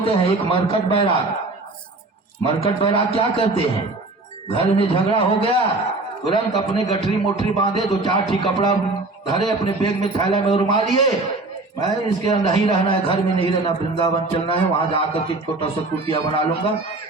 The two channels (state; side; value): quieter; left; 3.1 dB